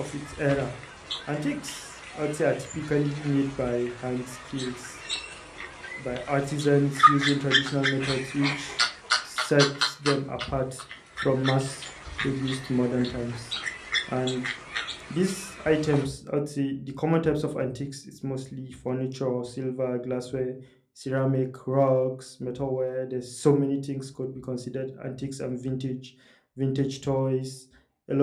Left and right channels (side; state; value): both; identical; correlation 1.00